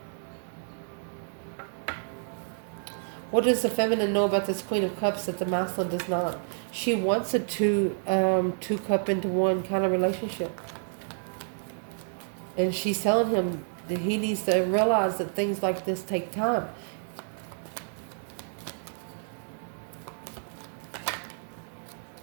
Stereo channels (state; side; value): silent; left; digital silence